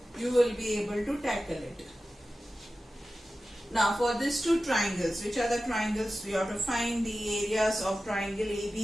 you will be able to tackle it. Now for these two triangles, which are the triangles? We have to find the areas of triangle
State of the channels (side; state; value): both; normal; correlation 0.94